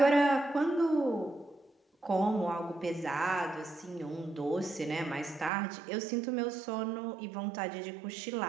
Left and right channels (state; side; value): drops out; left; at 5.5 s